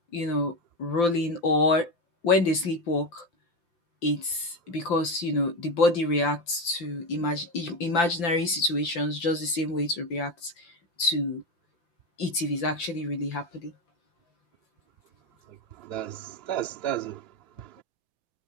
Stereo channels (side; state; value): right; late; 5.8 ms